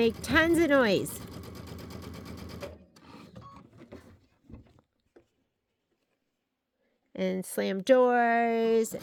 tons of noise. And slam doors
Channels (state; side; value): identical; both; correlation 1.00